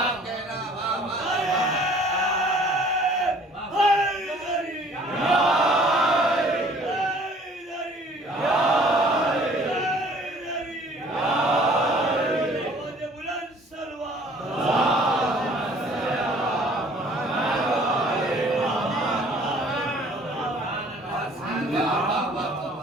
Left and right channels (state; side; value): normal; both; correlation 0.54